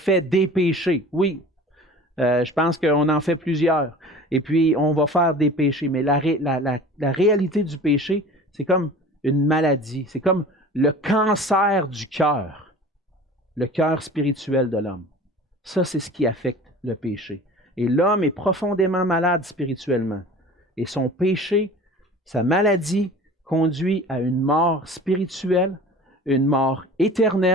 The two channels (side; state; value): both; normal; correlation 0.41